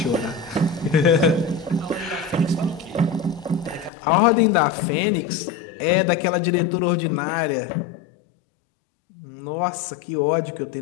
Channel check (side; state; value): right; drops out; at 3.9 s